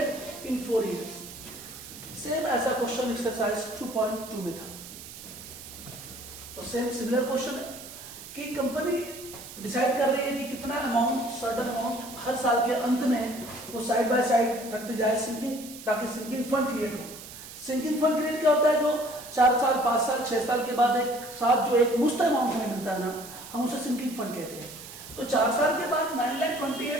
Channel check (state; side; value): noise; right; hiss, 14 dB below the sound